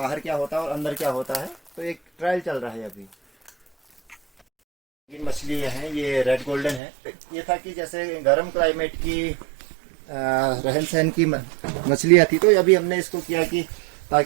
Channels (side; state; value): left; drops out; at 6.8 s